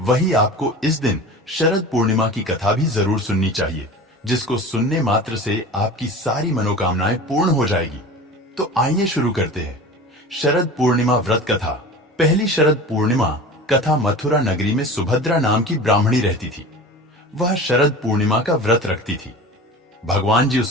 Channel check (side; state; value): both; normal; correlation 0.36